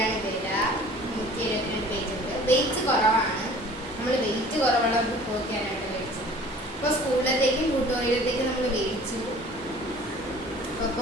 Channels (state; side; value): normal; both; correlation 0.48